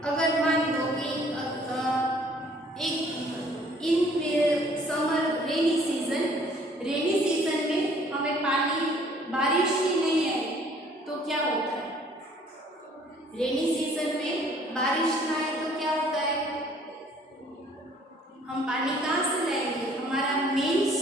अगर मान लो कि एक इन समर रेनी सीजन में हमें पानी बारिश ही नहीं है तो क्या होता है? रेनी सीजन में बारिश ना आए तो क्या होता है? हम पानी कहाँ से लाएंगे? हमारा मेन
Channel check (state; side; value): normal; both; correlation 0.58